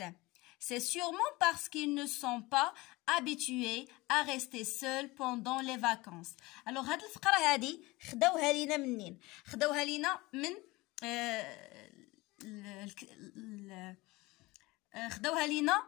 C'est sûrement parce qu'ils ne sont pas habitués à rester seuls pendant les vacances. Alors هاد الفقره هادي خداوها لينا منين؟ خداوها لينا من خداوها لينا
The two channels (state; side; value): quieter; right; 21.6 dB